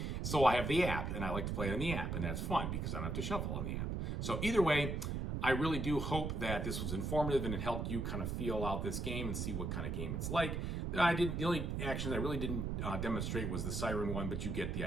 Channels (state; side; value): noise; right; rumble, 1 dB below the sound